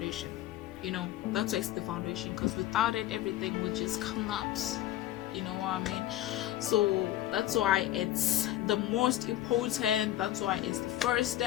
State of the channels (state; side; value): quieter; right; 13.7 dB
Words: That's why it's the foundation. Because without it, everything will just collapse. You know what I mean? So that's why it's the most important. That's why it's the first